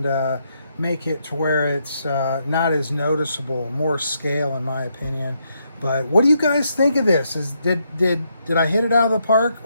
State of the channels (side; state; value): both; inverted; correlation -0.78